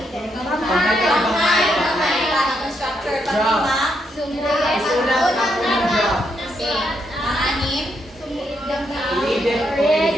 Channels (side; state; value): both; normal; correlation 0.78